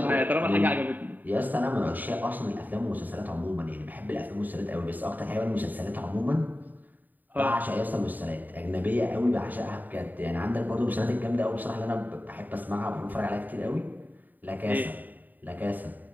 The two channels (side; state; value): left; late; 0.087 ms